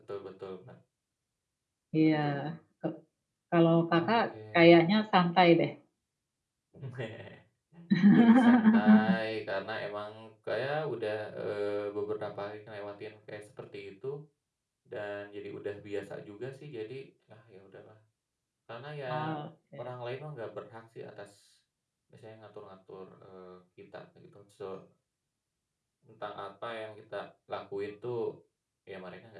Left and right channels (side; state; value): both; identical; correlation 1.00